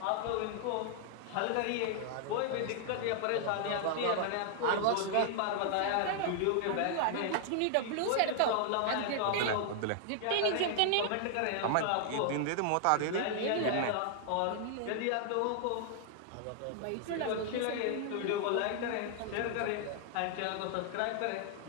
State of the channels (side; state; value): both; different; correlation 0.00